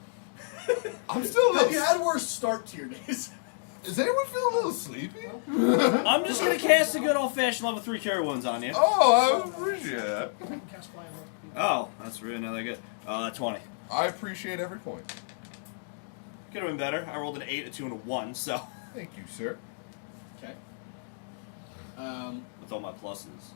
I'm still a Have little... you had worse start to your days? Does anyone feel a little sleepy? I'm just gonna cast a good old-fashioned level 3 cure wounds on you. Oh, I appreciate that. Oh, that's really not that good. 20. I appreciate every point. Could have been better. I rolled an 8, a 2, and a 1, so. Thank you, sir. Okay. With all my pluses,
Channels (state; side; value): silent; right; digital silence